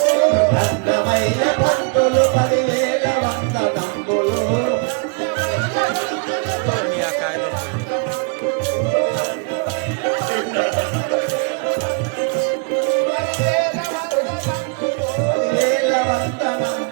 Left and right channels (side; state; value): left; quieter; 35.0 dB